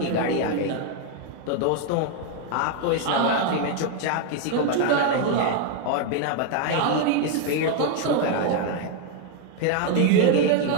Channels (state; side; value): different; both; correlation 0.01